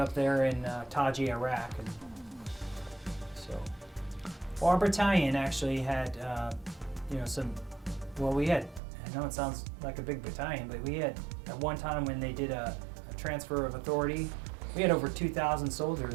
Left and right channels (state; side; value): drops out; left; at 8.8 s